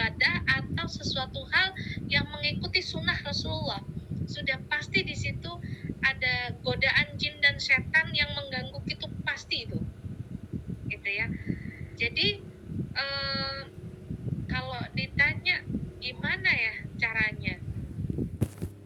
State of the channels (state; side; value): identical; both; correlation 1.00